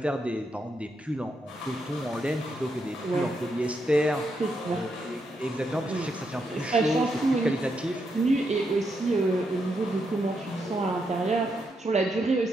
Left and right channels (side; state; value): both; normal; correlation 0.81